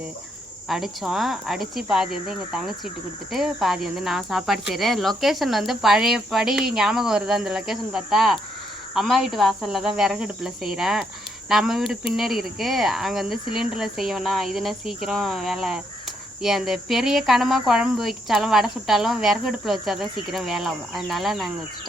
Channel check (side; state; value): both; normal; correlation 0.75